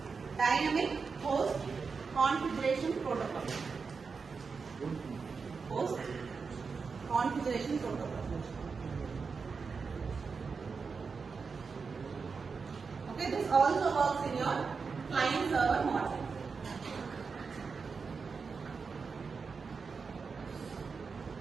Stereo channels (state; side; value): quieter; left; 5.1 dB